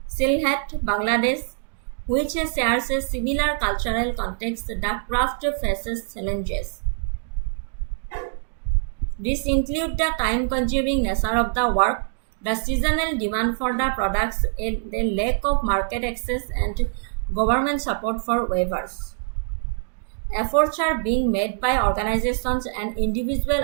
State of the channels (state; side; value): silent; left; digital silence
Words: Bangladesh, which shares a similar cultural context, the craft faces challenges. These include the time-consuming nature of the work, the seasonal demand for the products, and the lack of market access and government support for weavers. Efforts are being made by organizations and individual